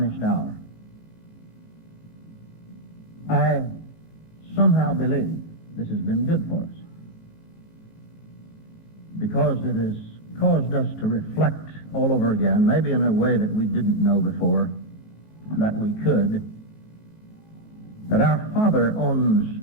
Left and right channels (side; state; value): right; late; 19 ms